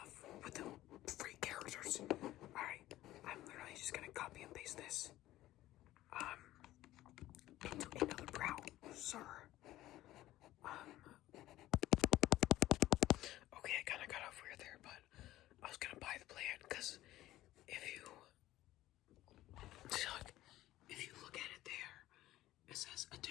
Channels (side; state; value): right; quieter; 15.4 dB